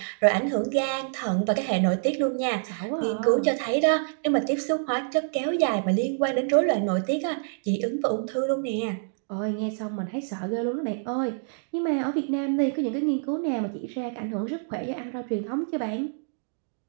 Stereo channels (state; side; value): silent; left; digital silence